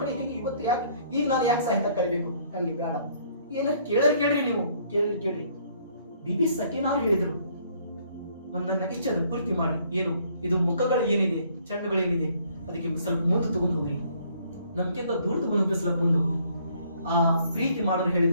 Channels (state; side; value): inverted; both; correlation -0.63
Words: ಕಡೆ ಹೇಗೆ ಇವತ್ತು ಈಗ ನಾನು ಯಾಕೆ ಸಹಾಯತ ಕಳಿಬೇಕು? ನನಗೆ ಬೇಡ. ಏನಾರು ಕೇಳ್ರಿ ನೀವು, ಕೇಳ್ರಿ. ಬಿಬಿ ಸಕೀನಾರು ಹೇಳಿದ್ರು, ಒಂದನ್ನ ಇಚ್ಛೆ ಪೂರ್ತಿ ಮಾಡಿ. ಏನು ಇದು ಮುಖಗಳು ಏನಿದೆ, ಚಂಡುಗಳು ಏನಿದೆ, ಅದಕ್ಕೆ ಸ್ವಲ್ಪ ಮುಂದೆ ತಗೊಂಡು ಹೋಗ್ರಿ, ನಮ್ಗಿಂತ ದೂರ ತಗೊಂಡು ಹೋಗಿಸ್ಲಕ್ ಬಂದು. ಆ ಪ್ರೀತಿ ಮಾಡೋರು